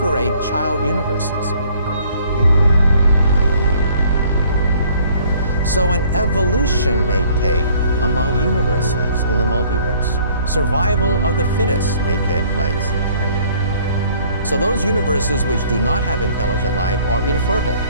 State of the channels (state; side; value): inverted; both; correlation -0.58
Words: child universes. So an evolution may take among universes in the multiverse. Survival of the fittest may take place. So those universes which do not have intelligent life are infertile.